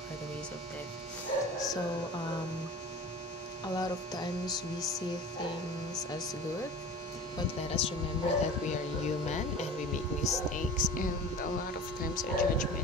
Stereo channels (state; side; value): normal; both; correlation 0.38